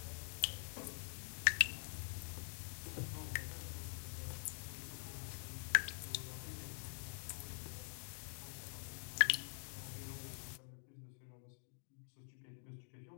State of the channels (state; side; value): silent; right; digital silence